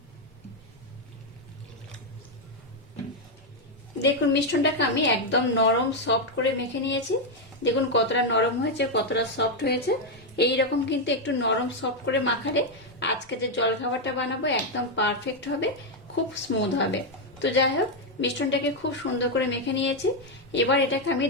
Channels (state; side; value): normal; both; correlation 0.02